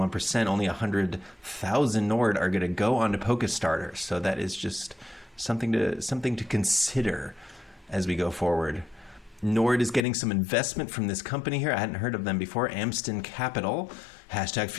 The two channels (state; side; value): drops out; right; at 10.0 s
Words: Only 100,000 NORD are going to go onto Polkastarter. So that is just something to consider as we go forward. NORD is getting some investment from this company here. I hadn't heard of them before. Amston Capital,